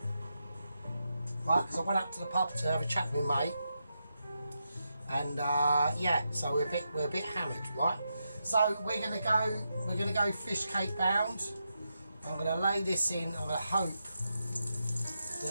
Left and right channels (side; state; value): both; inverted; correlation -0.85